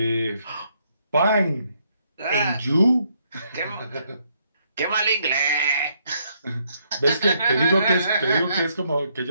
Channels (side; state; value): both; inverted; correlation -0.73